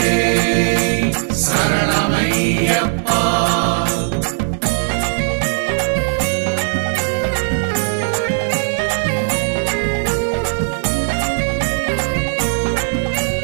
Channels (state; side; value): silent; left; 63 dB below the other